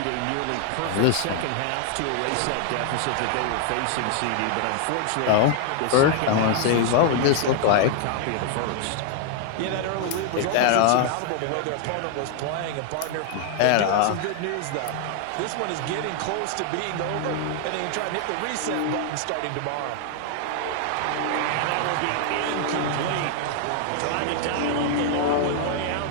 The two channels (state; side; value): different; both; correlation 0.00